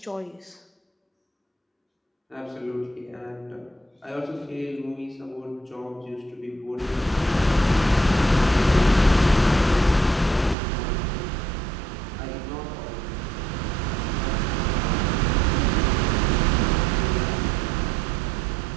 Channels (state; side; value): drops out; left; at 10.6 s